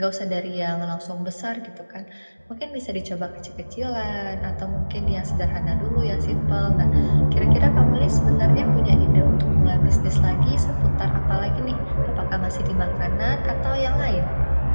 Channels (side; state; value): both; inverted; correlation -1.00